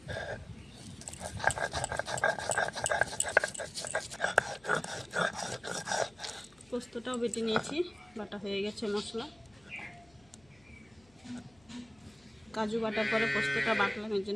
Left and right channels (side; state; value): left; noise; hum, 29 dB below the sound